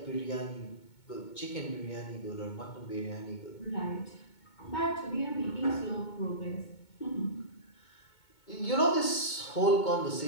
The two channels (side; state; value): right; late; 2.2 ms